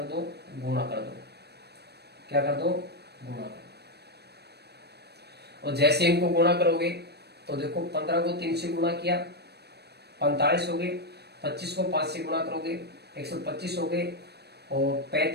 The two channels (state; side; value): late; left; 0.48 ms